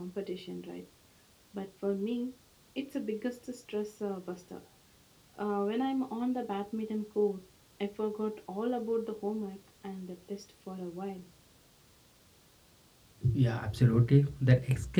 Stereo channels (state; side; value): identical; both; correlation 1.00